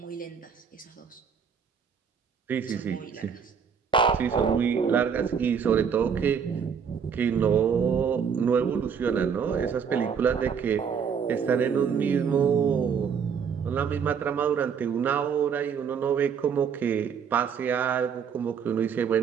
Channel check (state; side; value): quieter; left; 6.9 dB